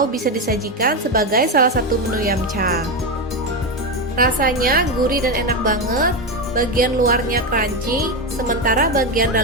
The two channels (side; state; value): both; normal; correlation 0.12